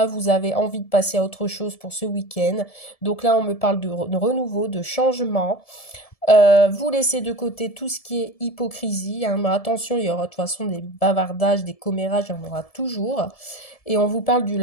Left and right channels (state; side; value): late; right; 1.7 ms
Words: vous avez envie de passer à autre chose pour ce week-end. Donc là, on me parle de renouveau, de changement. Vous laissez de côté tout ce qui est hypocrisie. Hein, mais attention, il y aura de toute façon des bavardages, des commérages, il y en aura toujours. Et on vous parle de